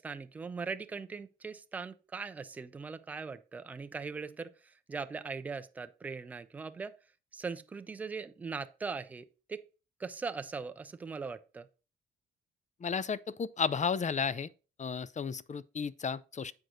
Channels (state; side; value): normal; both; correlation 0.37